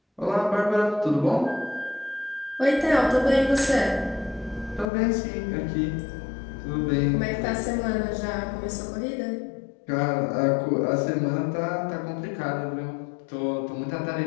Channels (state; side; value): drops out; right; at 4.9 s